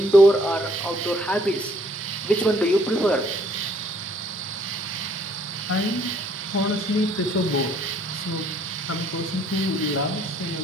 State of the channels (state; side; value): normal; both; correlation 0.63